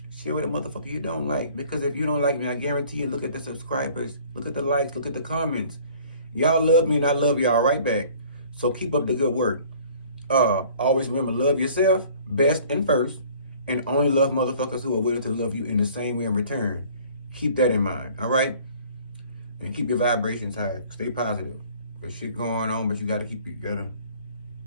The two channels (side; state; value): both; inverted; correlation -0.52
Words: Share with a motherfucker you don't like. Because if you don't like me, I guarantee you, look at the subscribers, look at the likes, look at the comments. Y'all love me and I love y'all right back. So keep up the good work. Always remember, love yourself best and first, and only love motherfuckers who are willing to love you in the same way in return. Keep that in mind, all right? And keep your vibrations high. Stay positive. There's shit going on, but you gotta